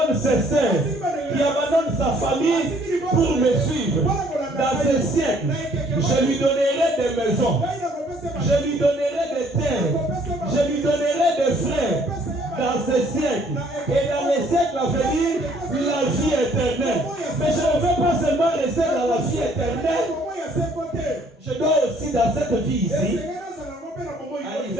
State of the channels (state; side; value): normal; both; correlation 0.61